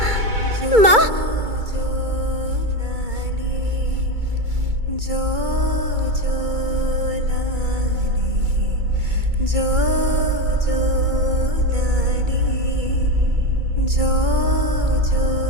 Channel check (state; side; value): late; left; 2.2 ms